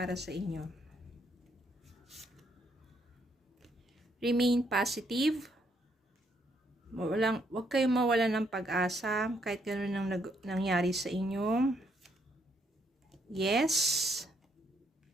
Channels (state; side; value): normal; both; correlation 0.73